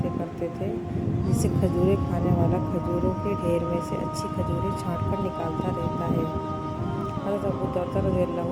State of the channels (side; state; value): both; identical; correlation 1.00